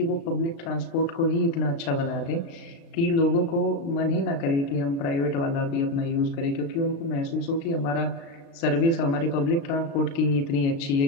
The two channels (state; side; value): late; right; 36 ms